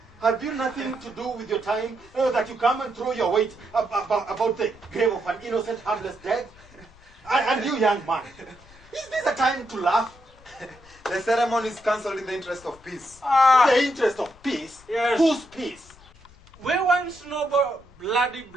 have you nothing to do with your time that you come and throw your weight about the grave of an innocent, harmless dead? And you, young man, is this a time to laugh? The ceremony is cancelled in the interest of peace. The interest of peace? Yes. Whose peace? We want no bloody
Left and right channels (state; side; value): noise; left; rumble, 24 dB below the sound